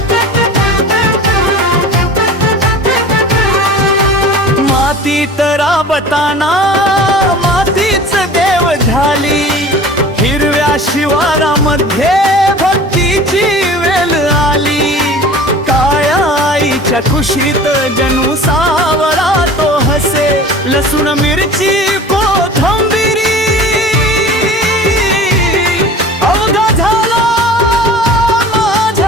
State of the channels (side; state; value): both; normal; correlation 0.41